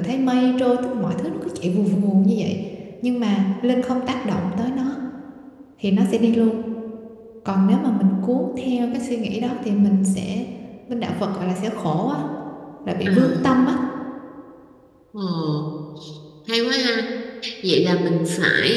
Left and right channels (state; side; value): identical; both; correlation 1.00